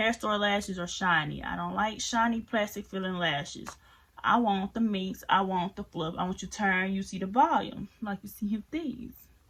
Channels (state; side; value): identical; both; correlation 1.00